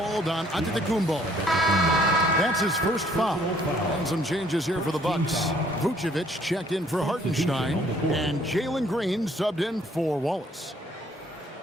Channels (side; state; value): both; normal; correlation 0.62